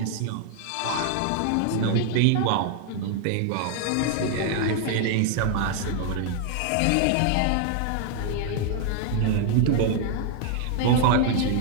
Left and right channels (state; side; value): different; both; correlation 0.00